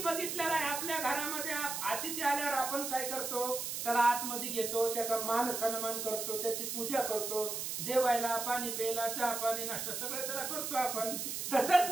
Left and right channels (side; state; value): right; noise; hiss, 4 dB below the sound